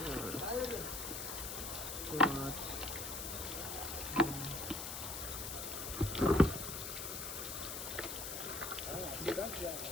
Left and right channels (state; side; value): noise; left; hiss, 5 dB below the sound